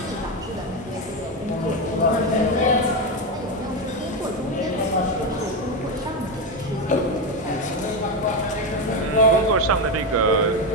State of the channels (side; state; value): both; normal; correlation 0.11